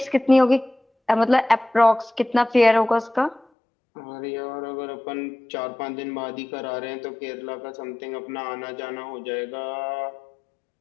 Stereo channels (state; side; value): drops out; right; at 3.5 s